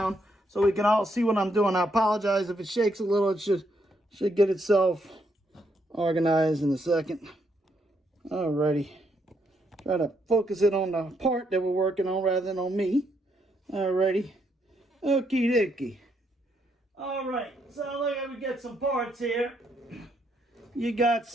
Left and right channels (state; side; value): normal; both; correlation 0.76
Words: so we can all see what I'm doing. I apologize if it shakes a little. It should get itself organized in a second. Alrighty. Try to focus it on the part that we're working on rather than on me. Alrighty. Okie dokie. Alright. So look at we get some parts here. You got